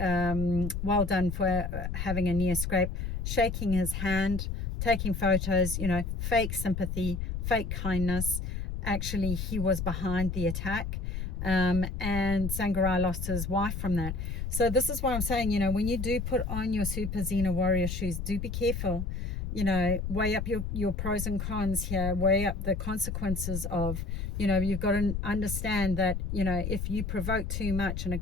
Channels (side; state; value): left; noise; rumble, 4 dB below the sound